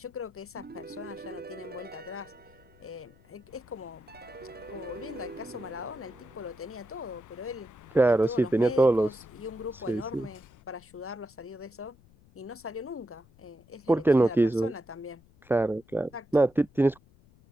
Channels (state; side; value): noise; left; rumble, 27 dB below the sound